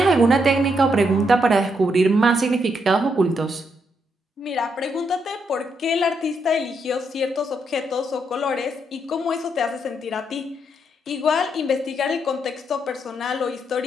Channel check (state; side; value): normal; both; correlation 0.78